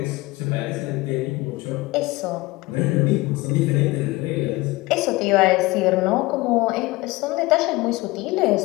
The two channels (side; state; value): right; quieter; 21.2 dB